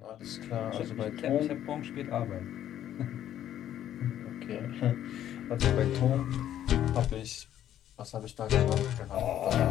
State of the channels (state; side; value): quieter; right; 11.3 dB